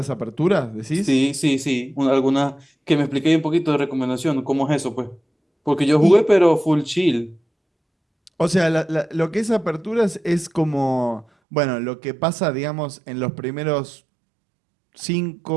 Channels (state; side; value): drops out; left; at 11.2 s